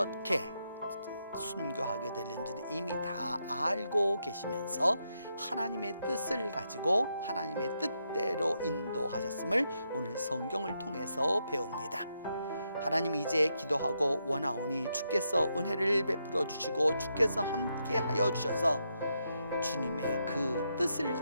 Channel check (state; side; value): inverted; both; correlation -0.81